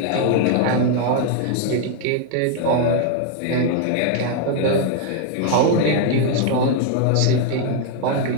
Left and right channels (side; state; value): both; different; correlation 0.00